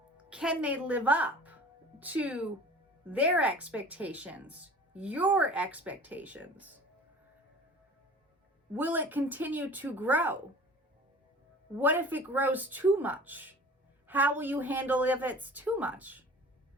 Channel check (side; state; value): both; normal; correlation 0.43